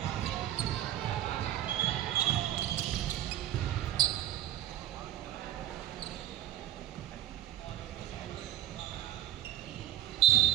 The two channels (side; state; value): left; quieter; 12.5 dB